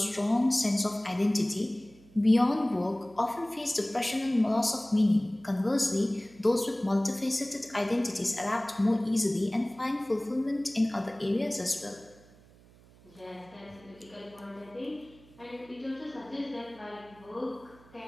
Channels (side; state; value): right; noise; hum, 25 dB below the sound